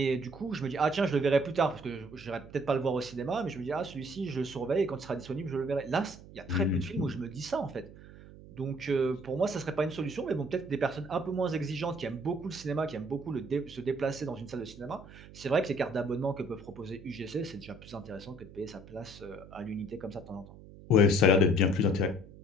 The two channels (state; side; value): noise; right; hum, 18 dB below the sound